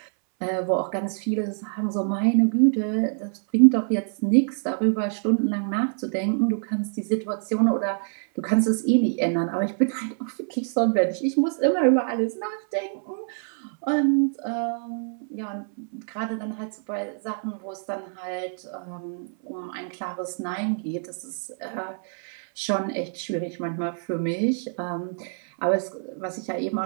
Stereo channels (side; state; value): left; silent; 61 dB below the other